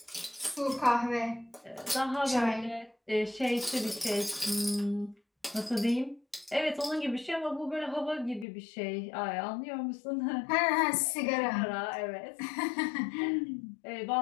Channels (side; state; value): right; drops out; at 8.5 s